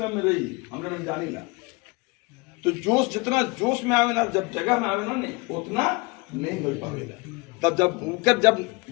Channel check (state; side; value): quieter; right; 26.0 dB